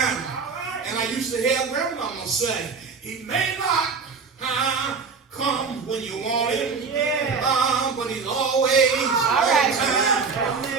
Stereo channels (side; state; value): left; quieter; 5.1 dB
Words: And I used to hear grandmama say, he may not come when you want him, but he's always on time.